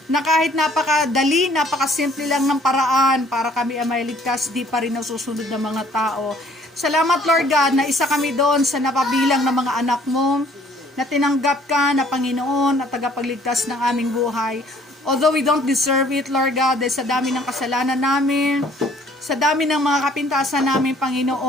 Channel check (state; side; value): normal; both; correlation 0.58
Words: na kahit napakadali, napakasimple lang ng paraan para kami ay maligtas, di pa rin nasusunod ng mga tao. Salamat, Lord God, na isa kami doon sa napabilang ng mga anak mo, na tinanggap ka na Panginoon at tagapagligtas ng aming buhay. Although we don't deserve it, Lord God, dahil sa dami ng kasalanan namin, sa dami ng mga kapintasan namin,